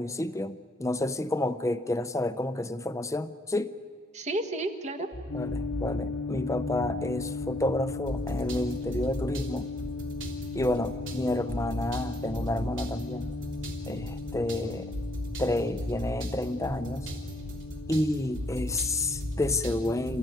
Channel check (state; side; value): normal; both; correlation 0.69